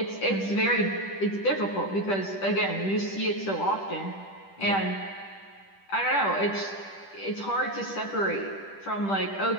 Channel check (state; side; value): late; right; 10 ms